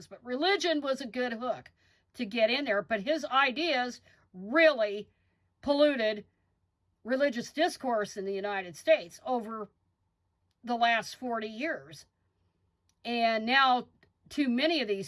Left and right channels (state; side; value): identical; both; correlation 1.00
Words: But religion was a good hook to get in there. But his ideas really polluted religious discourse in the United States over the last 40 years. And now too many of